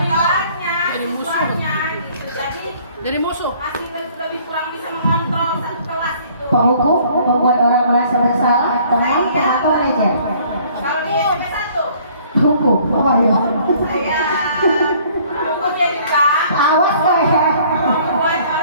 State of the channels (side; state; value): both; inverted; correlation -0.57